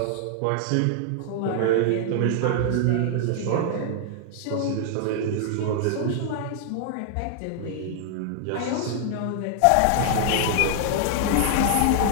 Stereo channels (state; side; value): different; both; correlation 0.00